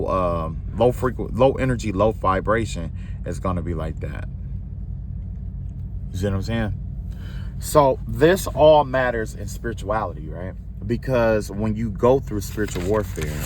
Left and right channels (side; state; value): both; identical; correlation 1.00